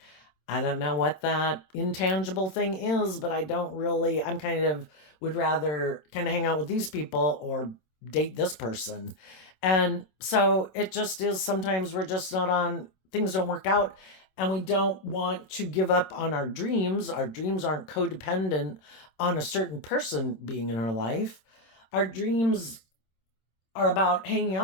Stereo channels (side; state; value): right; late; 26 ms